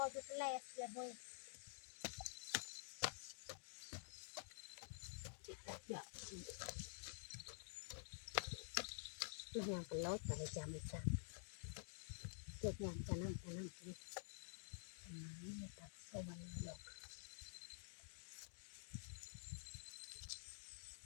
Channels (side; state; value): right; silent; digital silence